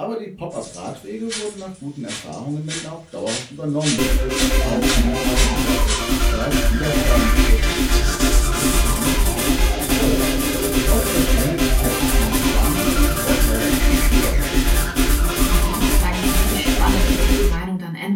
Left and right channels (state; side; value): identical; both; correlation 1.00